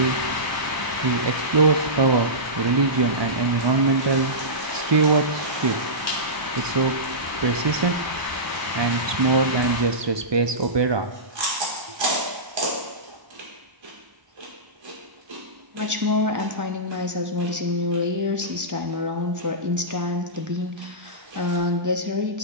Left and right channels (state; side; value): late; left; 1.0 ms